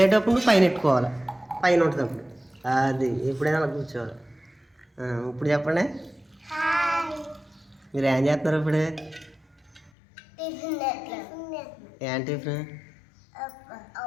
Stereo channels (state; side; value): drops out; right; at 9.9 s